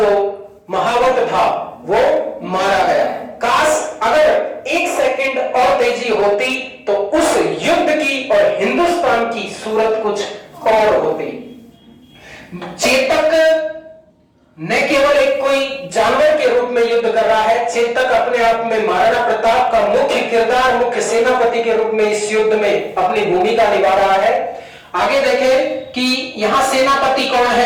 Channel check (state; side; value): identical; both; correlation 1.00